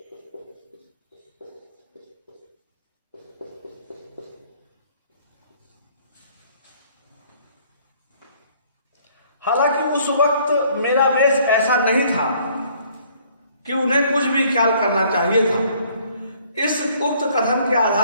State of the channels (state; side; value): inverted; both; correlation -0.60